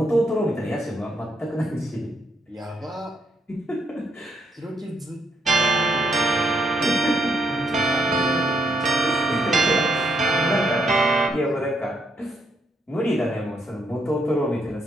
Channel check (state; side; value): normal; both; correlation 0.75